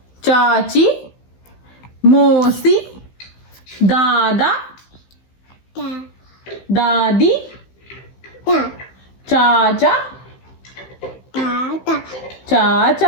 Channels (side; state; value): right; late; 15 ms